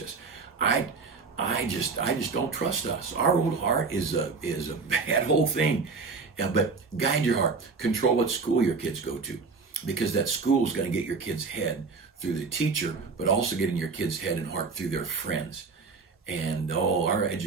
I just don't trust us. Our old heart is a bad whole thing. But guide your heart. Control what school your kids go to, because that school is going to get your kid's head through the teacher, but also getting your kid's head and heart through their friends. And our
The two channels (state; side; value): quieter; left; 4.5 dB